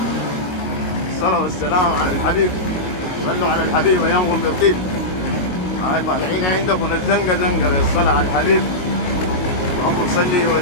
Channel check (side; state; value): right; late; 22 ms